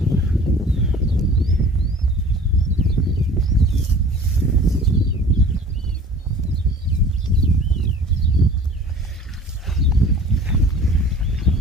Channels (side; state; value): both; normal; correlation 0.46